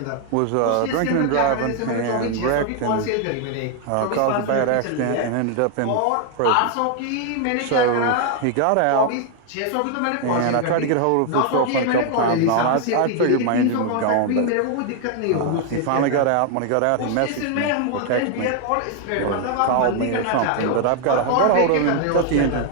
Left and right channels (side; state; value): both; different; correlation 0.00